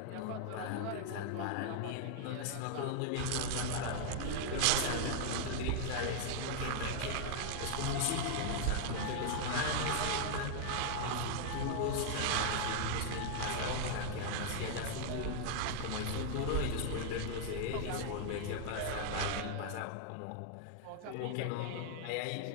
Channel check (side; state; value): both; different; correlation 0.00